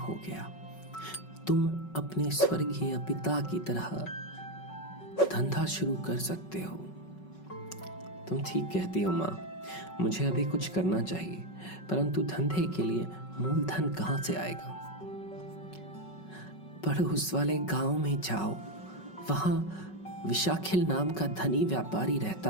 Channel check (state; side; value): late; right; 5.4 ms